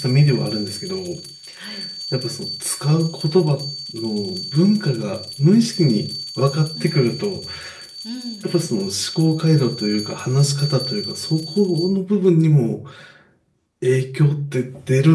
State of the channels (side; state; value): both; identical; correlation 1.00